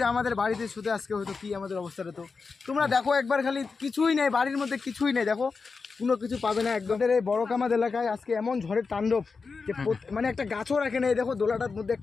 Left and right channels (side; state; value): right; quieter; 4.7 dB